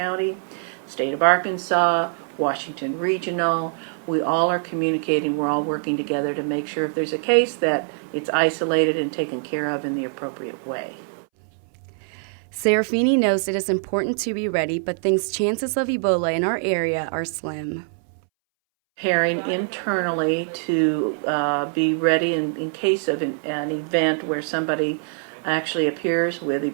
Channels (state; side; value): silent; left; 63 dB below the other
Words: State of Arkansas, Washington Regional. We all are communicating. We're all working together to make sure if there's a case that it's isolated and taken care of in the appropriate way. Serafini knows it is important to be ready, but thinks chances of Ebola in our area are slim. Preparing internally to be ready in case of an event where somebody actually appears with